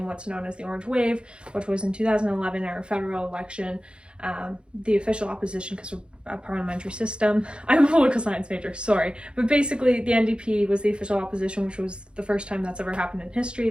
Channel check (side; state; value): left; late; 0.055 ms